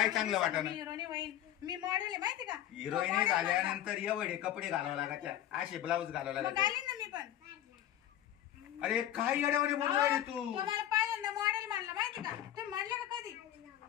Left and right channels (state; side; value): quieter; right; 12.1 dB